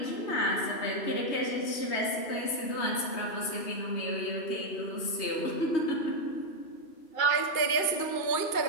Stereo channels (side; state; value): right; late; 3.2 ms